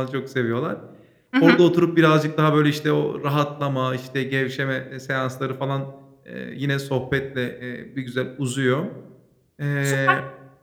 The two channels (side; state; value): both; identical; correlation 1.00